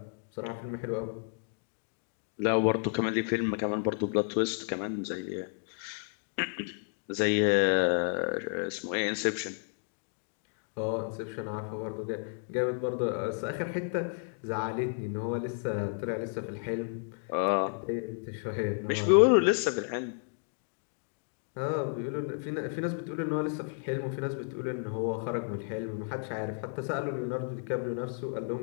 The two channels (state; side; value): silent; right; 56 dB below the other